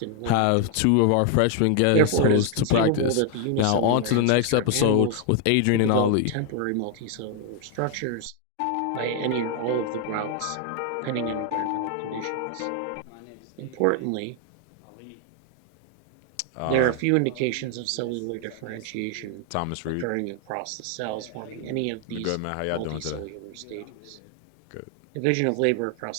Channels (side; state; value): both; different; correlation 0.00